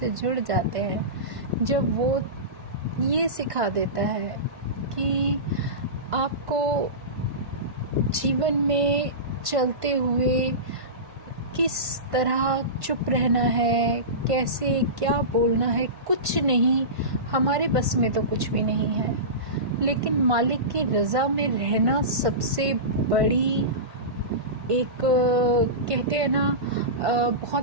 जुड़ जाते हैं, जब वो ये सिखा देता है कि आपको जीवन में चलते हुए किस तरह चुप रहना है, कैसे क्या बोलना है, कुछ नहीं, हमारे बस में तो कुछ भी नहीं है। लेकिन मालिक की रज़ा में रहना सबसे बड़ी एक कहते हैं ना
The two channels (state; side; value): late; left; 1.5 ms